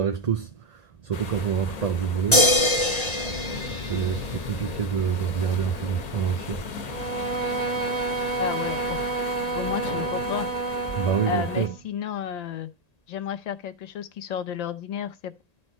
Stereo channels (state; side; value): late; right; 1.8 ms